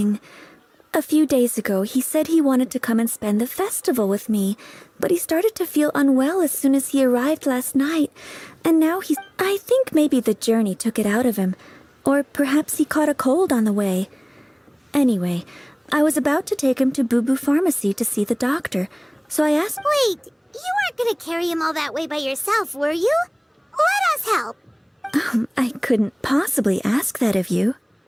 A few days ago, he said he wanted to come and spend the festival with me, but he started to feel unwell as soon as he arrived last night, and now he's... I think maybe the journey took it out of him, or perhaps he caught a cold on the way. Anyway, I was about to take him to Boo Boo Pharmacy to see the doctor, so I asked... Wait, you weren't gonna carry him all that way by yourself, were you? Let us help. I couldn't possibly ask that of you.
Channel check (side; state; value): both; identical; correlation 1.00